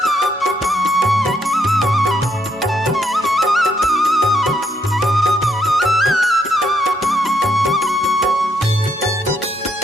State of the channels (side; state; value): both; normal; correlation 0.74